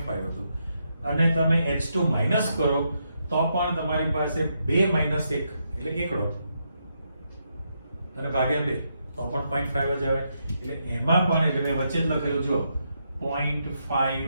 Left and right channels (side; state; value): both; inverted; correlation -0.80